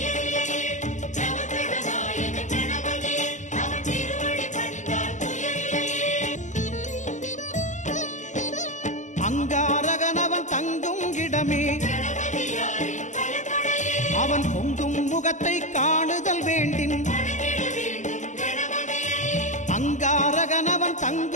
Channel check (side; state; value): right; late; 0.35 ms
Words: அங்காரகனவன் தங்கும் இடமே அவன் பொங்கும் முகத்தை காணுதல் வேண்டின். அங்காரகனவன்